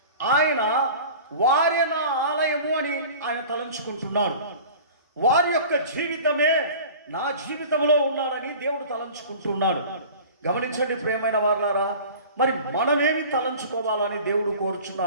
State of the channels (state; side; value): inverted; both; correlation -0.41